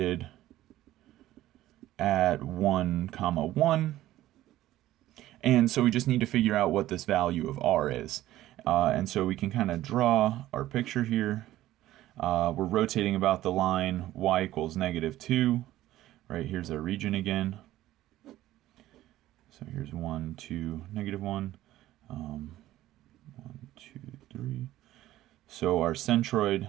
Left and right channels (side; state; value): left; quieter; 14.8 dB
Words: at 1, 1. And so we just need to figure out what this value of r is. And so we can kind of draw our picture here. We're rotating about the line y equals -2. Right, here's our region again. So here's 1, 2, -1. 1, 2, 3. So our centroid